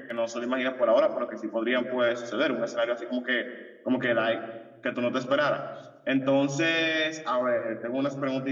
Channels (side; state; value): both; identical; correlation 1.00